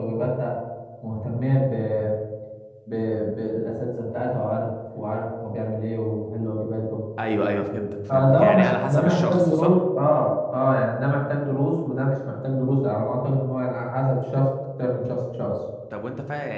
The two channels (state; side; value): identical; both; correlation 1.00